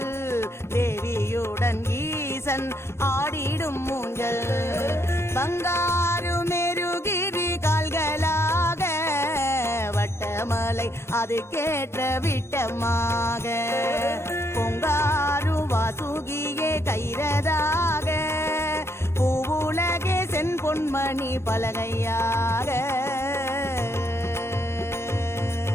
தேவியுடன் ஈசன் ஆடிடும் ஊஞ்சல் பங்காரு மெருகிரி கால்களாக வட்டமலை அது கேட்ட விட்டமாக பொங்காரு வாசுகியே கைரதாக பூவுலகே சென் பொன்மணி பலகையாக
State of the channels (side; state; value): right; late; 0.12 ms